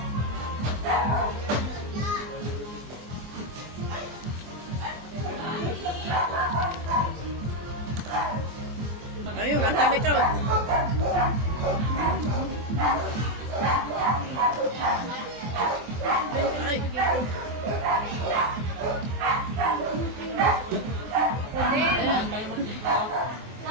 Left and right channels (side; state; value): left; late; 24 ms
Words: Ayun, ang kami ko. Ay.